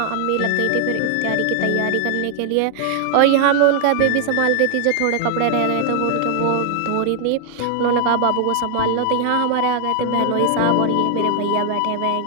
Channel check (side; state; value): both; different; correlation 0.00